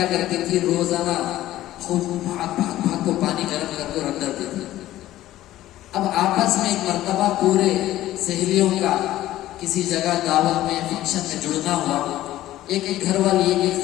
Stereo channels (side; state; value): right; quieter; 14.6 dB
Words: کرتی تھی روزانہ بھاگ بھاگ بھاگ کو پانی گرم کر کے رکھ دیتی تھی. اب آپس میں ایک مرتبہ پورے سہیلیوں کا کسی جگہ دعوت میں فنکشن میں جڑنا ہوا. ایک ایک گھر والی ایک ایک